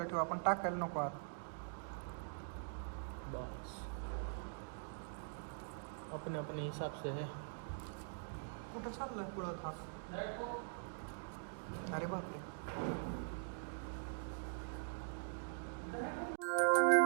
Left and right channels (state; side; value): silent; left; digital silence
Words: ठेवू आपण, टाकायला नको आत. बस अपने अपने हिसाब से है. कुठं चाललाय पुढं हा? अरे बापरे.